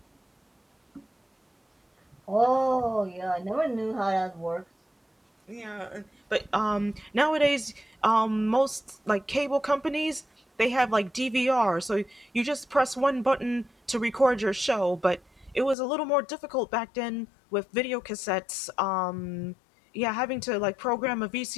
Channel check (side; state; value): right; drops out; at 15.8 s